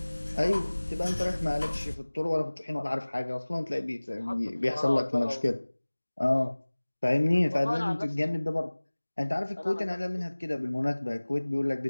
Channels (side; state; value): both; inverted; correlation -1.00